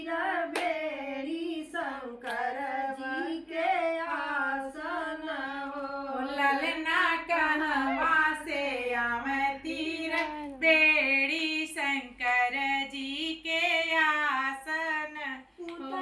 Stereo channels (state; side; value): identical; both; correlation 1.00